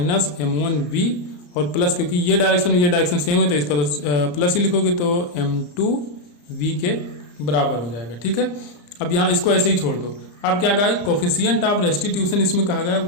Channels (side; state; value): right; late; 34 ms